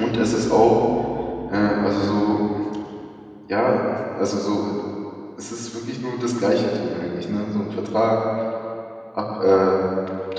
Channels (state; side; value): identical; both; correlation 1.00